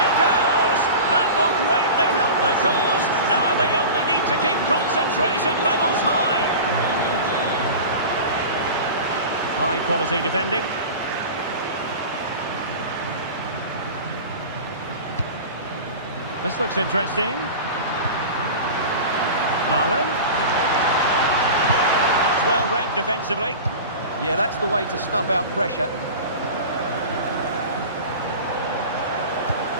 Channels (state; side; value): inverted; both; correlation -0.33